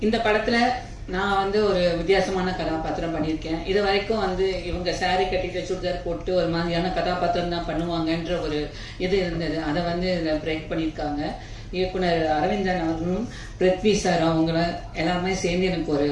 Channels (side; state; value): both; identical; correlation 1.00